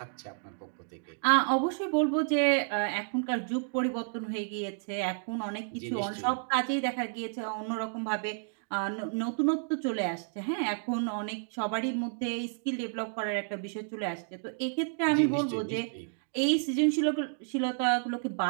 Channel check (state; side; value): silent; left; digital silence